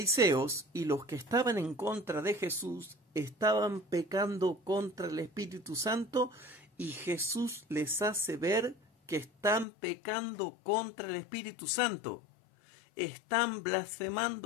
y los que estaban en contra de Jesús estaban pecando contra el Espíritu Santo, y Jesús les hace ver que están pecando contra el Espíritu Santo. Están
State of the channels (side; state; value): right; drops out; at 9.7 s